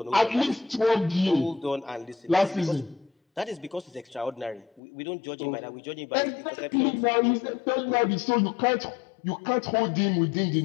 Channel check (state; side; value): drops out; right; at 4.8 s